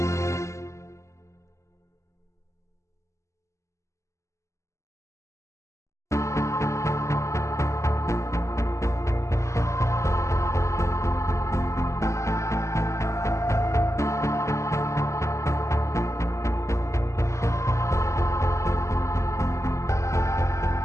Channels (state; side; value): late; right; 0.14 ms